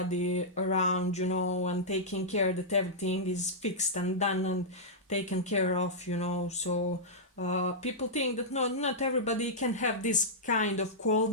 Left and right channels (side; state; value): both; normal; correlation -0.11